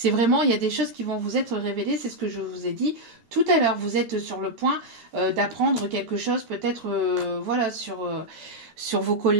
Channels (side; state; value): left; late; 13 ms